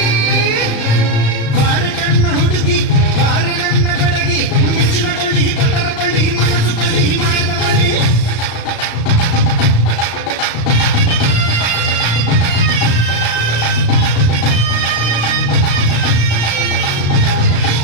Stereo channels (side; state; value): right; late; 35 ms